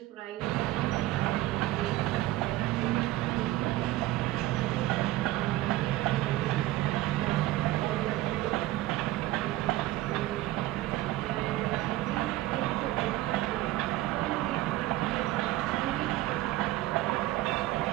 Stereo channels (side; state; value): left; quieter; 16.3 dB